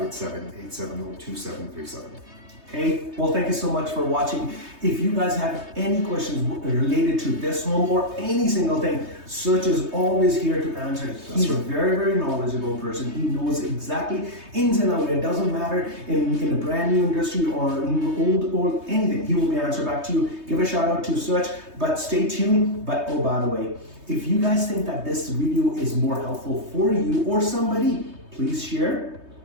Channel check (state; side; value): late; left; 3.2 ms